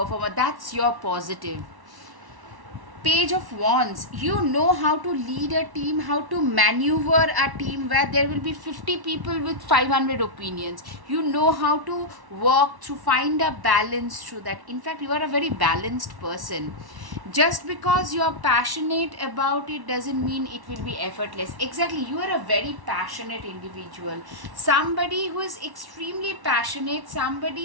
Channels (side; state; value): left; late; 1.1 ms